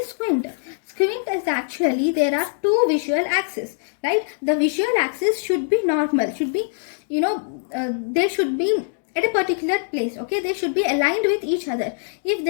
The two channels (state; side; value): silent; right; digital silence